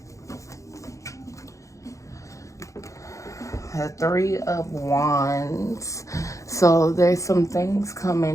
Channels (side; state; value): right; late; 0.15 ms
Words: The Three of Wands. So there's some things